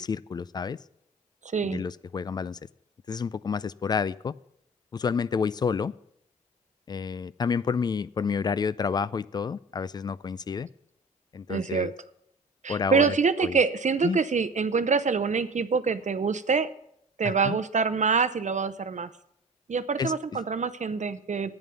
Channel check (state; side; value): normal; both; correlation 0.39